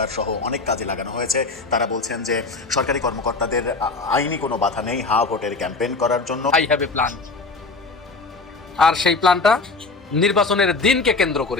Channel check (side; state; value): right; quieter; 3.9 dB